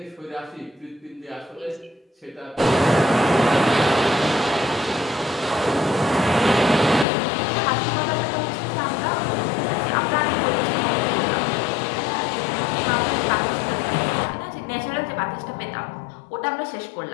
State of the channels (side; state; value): right; drops out; at 7.1 s